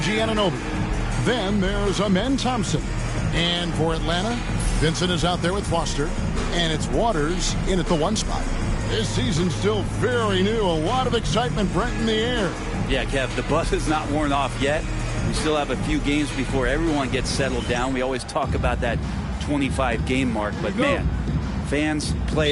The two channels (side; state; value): both; identical; correlation 1.00